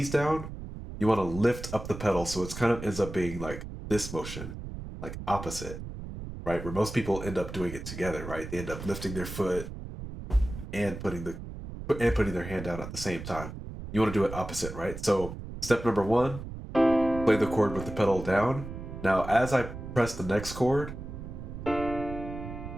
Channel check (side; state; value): right; noise; rumble, 10 dB below the sound